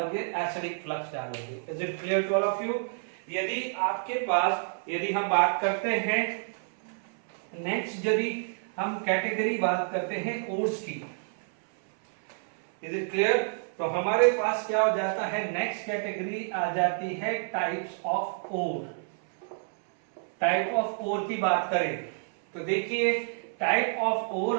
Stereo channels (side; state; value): left; silent; 59 dB below the other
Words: एसिडिक फ्लक्स डालोगे। Is it clear to all of you? यदि आपके पास, यदि हम बात करते हैं नेक्स्ट, यदि हम कैटेगरी बात करते हैं ओर्स की, इज इट क्लियर? तो हमारे पास क्या हो जाता है? नेक्स्ट कैटेगरी आ जाती है types of ore. Type of ore की बात करें तो देखिए टाइप ऑफ